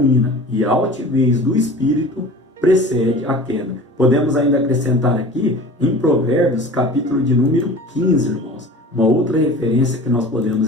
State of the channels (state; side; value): normal; both; correlation 0.40